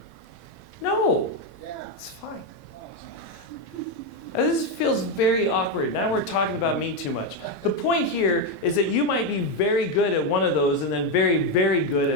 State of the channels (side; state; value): both; normal; correlation 0.07